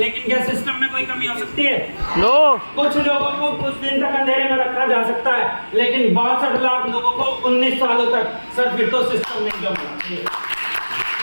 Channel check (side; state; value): both; inverted; correlation -1.00